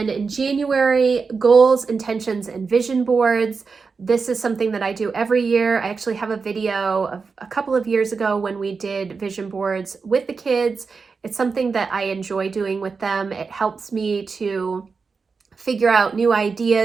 in January, goals, intentions, and vision boards. This is something that I do every year. I actually have a video of a couple of years ago when we did vision boards with the kids. It's something that I enjoy doing with them. It helps me to figure out new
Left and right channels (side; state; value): left; quieter; 4.9 dB